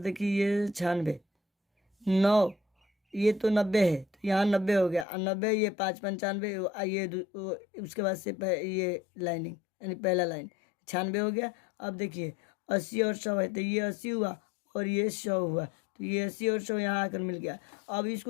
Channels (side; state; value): right; drops out; at 5.1 s